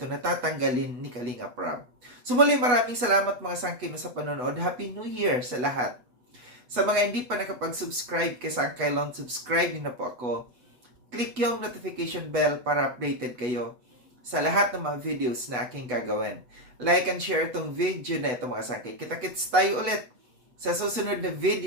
na tatanggalin ni Kalingap Rob. So muli, maraming salamat mga sangkay sa panonood. Happy New Year sa lahat. Sa mga hindi pa nakapag-subscribe kay Sangkay Lon, subscribe na po ako. Click yung notification bell para updated kayo sa lahat ng mga videos na aking gagawin. Like and share itong video na ito mga sangkay. Kita-kits tayo ulit sa susunod na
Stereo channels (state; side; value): late; left; 8.1 ms